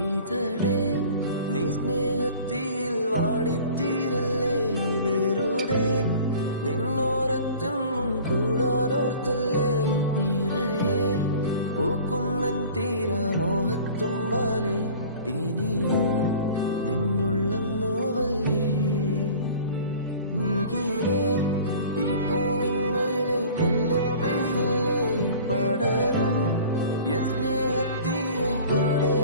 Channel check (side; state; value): both; inverted; correlation -0.45